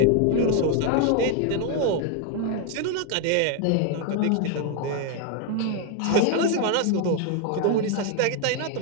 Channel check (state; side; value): different; both; correlation 0.01